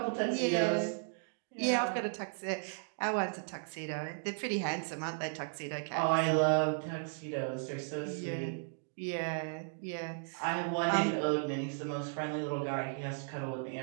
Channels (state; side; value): silent; left; digital silence